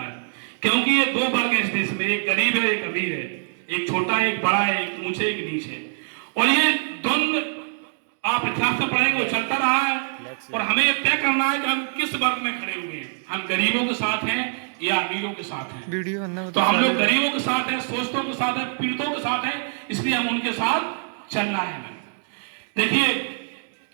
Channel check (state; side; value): silent; left; digital silence